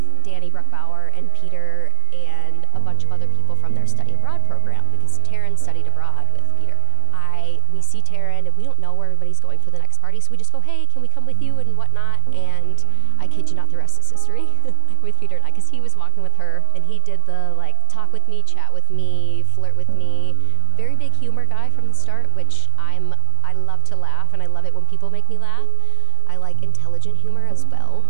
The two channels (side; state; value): both; different; correlation 0.00